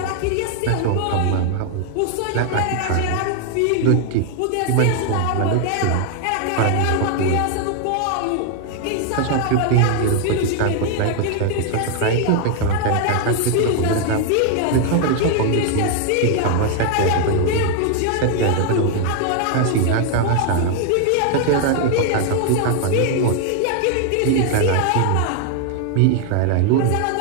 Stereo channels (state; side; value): different; both; correlation 0.00